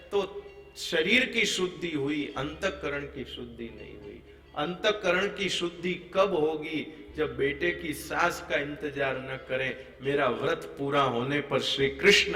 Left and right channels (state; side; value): identical; both; correlation 1.00